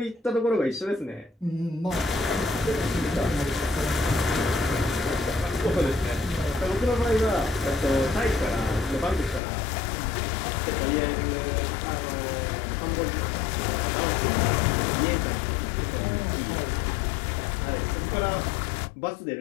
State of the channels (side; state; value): right; drops out; at 9.4 s